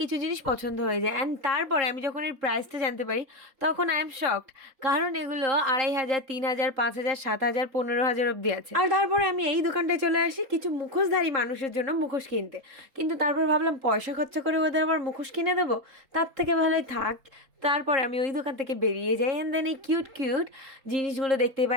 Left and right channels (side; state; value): left; late; 3.7 ms